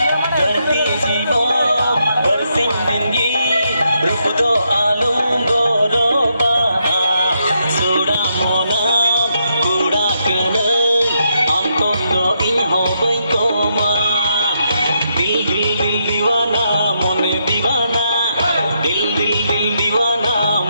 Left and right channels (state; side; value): inverted; both; correlation -0.78